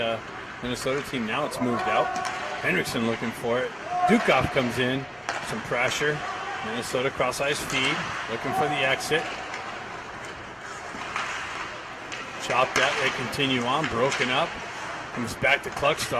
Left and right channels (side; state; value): both; identical; correlation 1.00